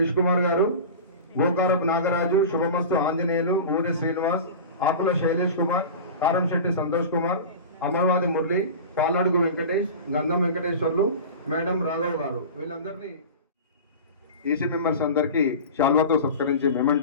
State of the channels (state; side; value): inverted; both; correlation -0.32